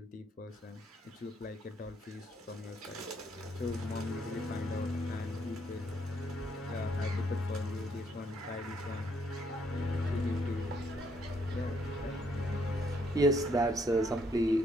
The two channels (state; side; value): normal; both; correlation 0.71